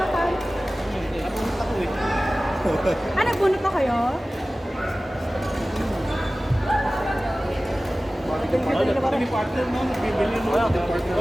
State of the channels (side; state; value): both; normal; correlation 0.97